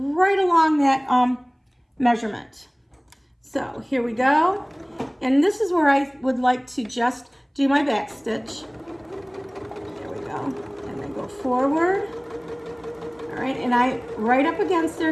along that measurement. So here we go. And this is where I would like to just do my back stitch. There we go. And then go forward. All right, and I right up against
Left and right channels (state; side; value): identical; both; correlation 1.00